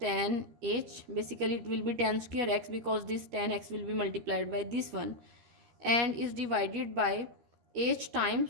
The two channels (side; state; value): left; late; 13 ms